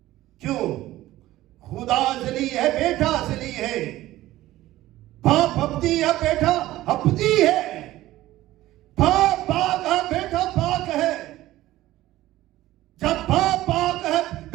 क्यों? खुदा अजली है, बेटा अजली है, बाप अबदी है, बेटा अबदी है, बाप पाक है, बेटा पाक है। जब बाप पाक है,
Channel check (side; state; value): left; quieter; 15.8 dB